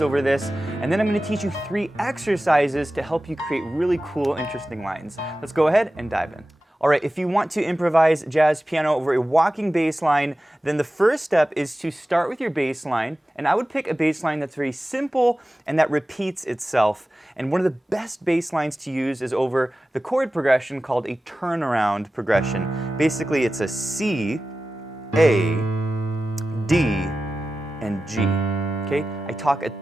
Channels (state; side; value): normal; both; correlation 0.95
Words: over this, and then I'm going to teach you 3 exercises to help you create really cool, interesting lines. Let's go ahead and dive in. Alright, if you want to improvise jazz piano over a walking bass line, then the first step is to start with your bass line, and I would pick a bass line that's very simple and that repeats itself. And one of the best bass lines to use is over the chord progression called a turnaround progression. Basically, it's a C, A, D, and G. Okay? I talk a